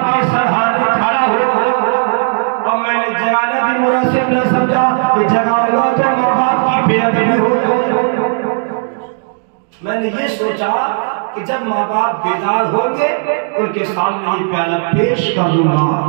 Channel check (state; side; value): silent; left; 70 dB below the other